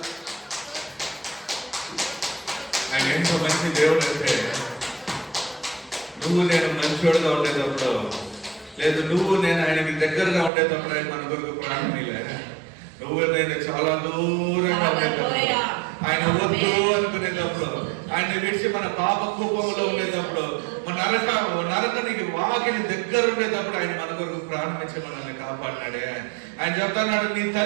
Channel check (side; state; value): left; drops out; at 10.5 s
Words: ఆయన ఎంతో మంచి దేవుడు అంటే, నువ్వు నేను మంచోడుగా ఉండేటప్పుడు, లేదు నువ్వు నేను ఆయనకి దగ్గరగా ఉండేటప్పుడు ఆయన మన కొరకు ప్రాణం ఇలే. నువ్వు నేను చాలా దూరంగా ఉండేటప్పుడు, ఆయన వద్దు అనుకునేటప్పుడు, ఆయన విడిచి మన పాప కూపంలో ఉండేటప్పుడు, మన నరకానికి వాకిలి దగ్గర ఉండేటప్పుడు ఆయన మన కొరకు ప్రాణం ఇచ్చి మనల్ని కాపాడినాడే. ఆయన చెప్తున్నాడు, నీ